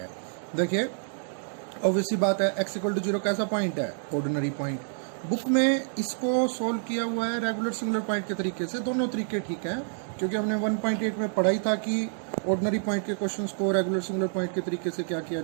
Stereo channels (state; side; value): silent; left; 59 dB below the other